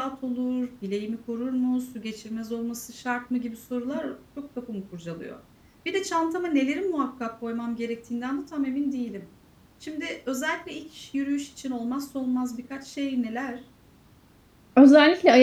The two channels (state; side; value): identical; both; correlation 1.00